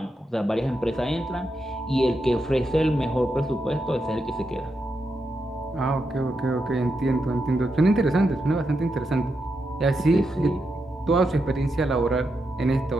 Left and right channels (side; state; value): both; normal; correlation 0.85